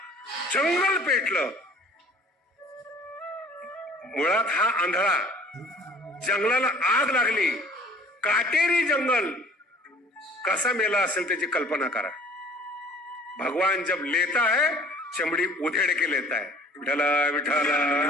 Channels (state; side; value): normal; both; correlation 0.51